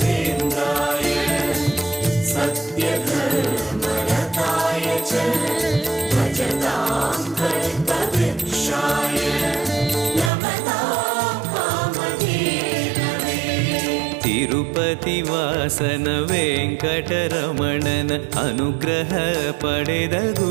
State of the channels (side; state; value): left; drops out; at 10.3 s